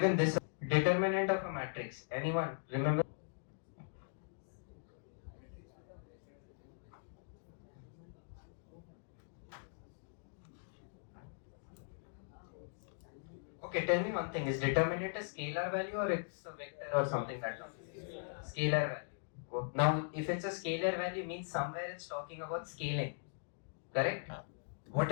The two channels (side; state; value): right; silent; digital silence